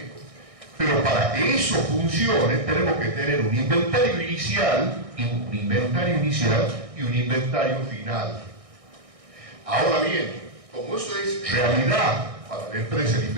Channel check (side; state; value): left; late; 1.6 ms